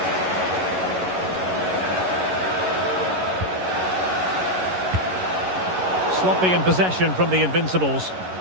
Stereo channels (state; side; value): late; left; 11 ms